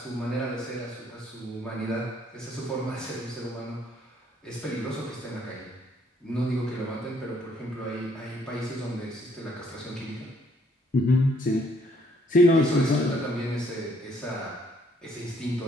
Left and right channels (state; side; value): normal; both; correlation 0.66